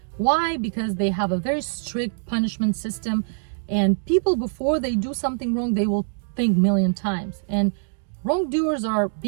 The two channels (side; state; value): left; silent; digital silence